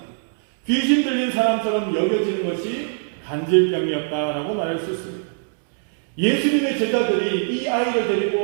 귀신 들린 사람처럼 여겨지는 것이 간질병이었다라고 말할 수 있습니다. 예수님의 제자들이 이 아이를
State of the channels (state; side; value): silent; left; digital silence